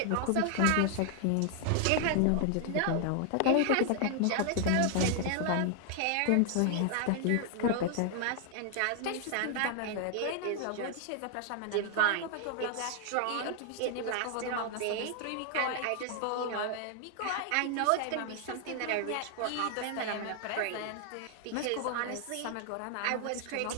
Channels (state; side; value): different; both; correlation 0.00